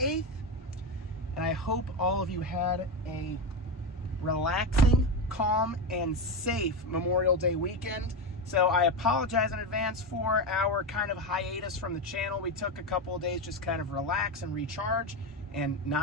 and I hope all of you had a relaxing, calm, and safe Memorial Day weekend. So I apologize in advance for our kind of hiatus from the channel. We took a couple of days just kind of relax and recharge and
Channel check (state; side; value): normal; both; correlation 0.14